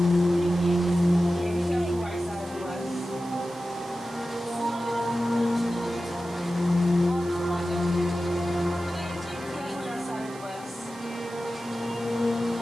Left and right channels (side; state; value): right; noise; hiss, 20 dB below the sound